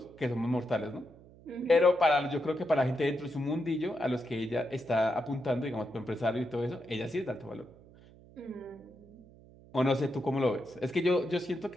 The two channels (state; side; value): noise; right; hum, 23 dB below the sound